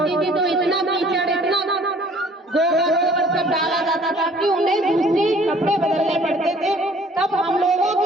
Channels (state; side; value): normal; both; correlation 0.55